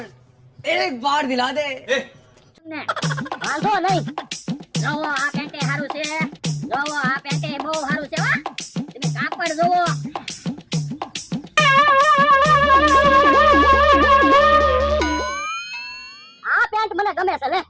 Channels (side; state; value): both; identical; correlation 1.00